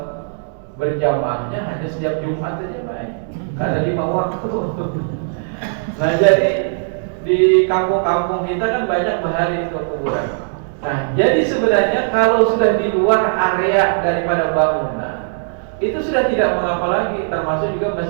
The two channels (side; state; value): left; silent; digital silence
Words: berjamaahnya hanya setiap Jumat aja, Pak. Karena 5 waktu. Nah jadi di kampung-kampung kita kan banyak bahari itu kuburan. Nah jadi sebenarnya kalau sudah di luar area daripada bangunan, itu sudah tidak mengapa lagi. Termasuk juga